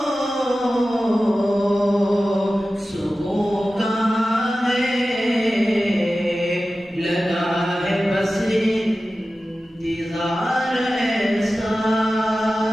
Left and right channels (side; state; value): both; normal; correlation 0.95